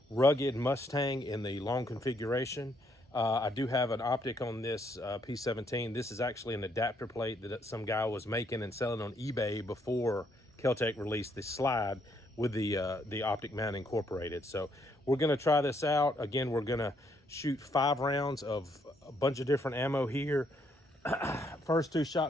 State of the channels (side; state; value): both; normal; correlation 0.72